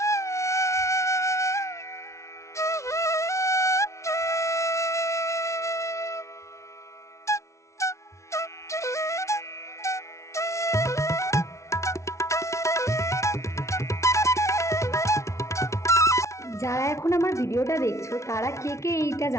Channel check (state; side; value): late; right; 0.14 ms